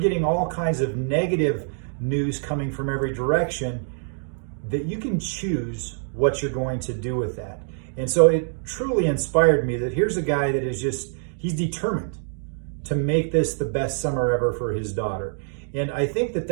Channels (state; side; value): silent; left; digital silence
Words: all kinds of negative news coming from every direction, that you can choose what you're going to do with that. And so it truly inspired me that here's a guy that he's determined to make this the best summer ever for his daughter. And I think that